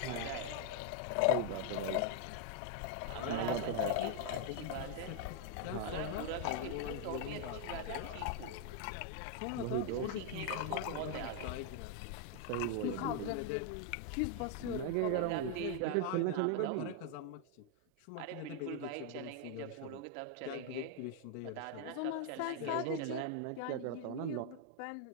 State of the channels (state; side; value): different; both; correlation 0.00